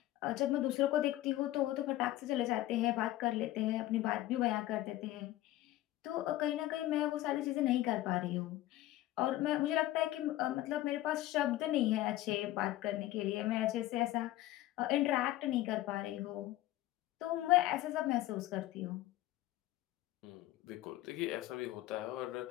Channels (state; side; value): quieter; right; 15.4 dB